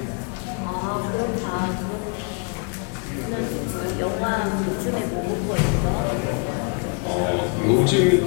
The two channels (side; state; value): right; quieter; 36.0 dB